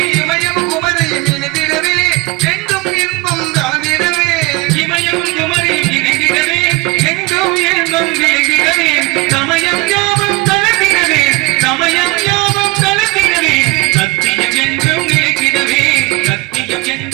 இமயம் குமரியில் இணைந்திடவே, எங்கும் இன்பம் கலந்திடவே. இமயம் குமரியில் இணைந்திடவே, எங்கும் இன்பம் விளங்கிடவே. சமயம் யோகம் கலந்திடவே, சமயம் யோகம் கலந்திடவே. சத்தியம் என்றும் நிலைத்திடவே, சத்தியம்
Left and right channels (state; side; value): quieter; left; 23.0 dB